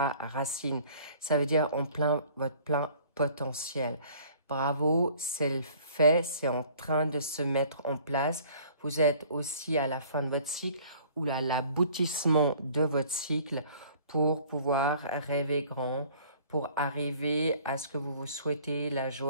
racine. Ça veut dire votre plein potentiel. Bravo, c'est le fait, c'est en train de se mettre en place. Vous êtes aussi à la fin de votre cycle ou à l'aboutissement de votre cycle pour pouvoir rêver grand, pour arriver à ce que vous vous souhaitez, la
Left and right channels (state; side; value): inverted; both; correlation -0.52